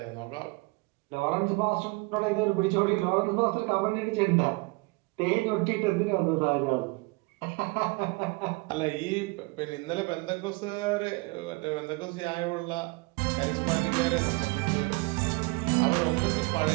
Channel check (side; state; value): left; quieter; 26.7 dB